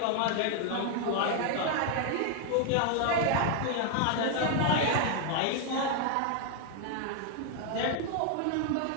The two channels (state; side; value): different; both; correlation 0.00